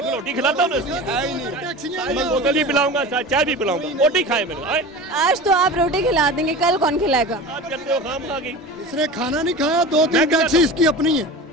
रोटी खिलाता हूँ, बोतल भी पिलाऊंगा, चाय भी पिलाऊंगा। रोटी खाए मैंने। आज तो आप रोटी खिला देंगे, कल कौन खिलाएगा? आप कहते हो खाम खा गई। इसने खाना नहीं खाया, 2-3 टैक्सी इसकी अपनी है।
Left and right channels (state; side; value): normal; both; correlation 0.33